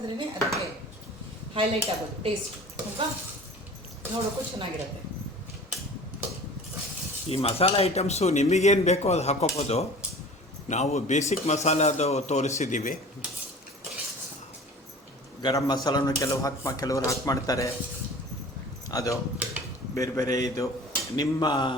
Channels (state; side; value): normal; both; correlation 0.42